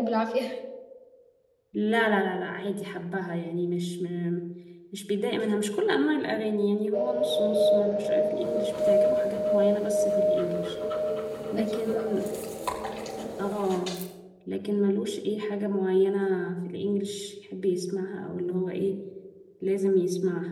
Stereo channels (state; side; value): identical; both; correlation 1.00